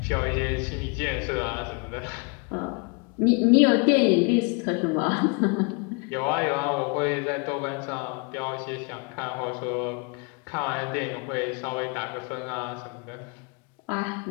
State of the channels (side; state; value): right; quieter; 33.2 dB